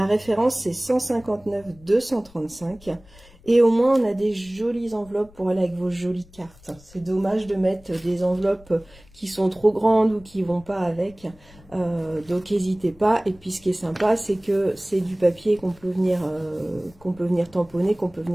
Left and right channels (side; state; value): left; noise; rumble, 25 dB below the sound